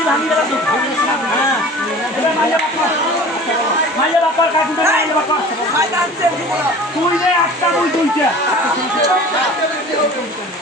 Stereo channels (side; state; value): both; normal; correlation 0.42